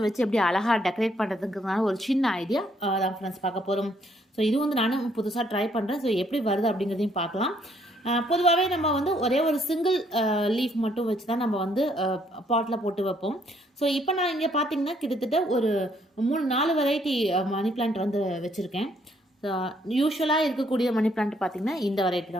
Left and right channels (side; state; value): both; normal; correlation 0.68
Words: வச்சு எப்படி அழகாக டெக்கரேட் பண்ணுறதுக்குனால ஒரு சின்ன ஐடியா தான் ஃப்ரெண்ட்ஸ் பார்க்க போகிறோம். ஸோ இது வந்து நானும் புதுசாக ட்ரை பண்ணுறேன். ஸோ எப்படி வருது அப்படிங்கிறதையும் பார்க்கலாம். பொதுவாகவே நம்ம வந்து ஒரே ஒரு சிங்கிள் லீஃப் மட்டும் வச்சு தான் நம்ம வந்து பாட்டில் போட்டு வைப்போம். ஸோ இப்போ நான் இங்கே பார்த்தீங்கன்னா கிட்டத்தட்ட ஒரு 3-4 வெரைட்டி மணி பிளான்ட் வந்து வச்சுருக்கேன். யூஸ்வலாக இருக்கக்கூடிய மணி பிளான்ட் பார்த்திங்கன்னா இந்த வெரைட்டி